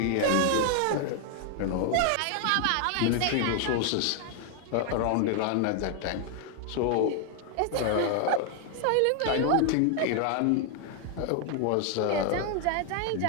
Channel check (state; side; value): different; both; correlation 0.00